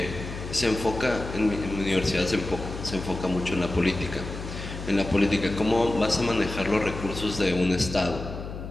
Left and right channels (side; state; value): left; noise; hum, 9 dB below the sound